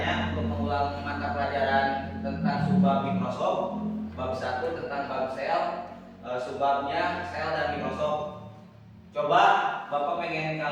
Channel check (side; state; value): both; identical; correlation 1.00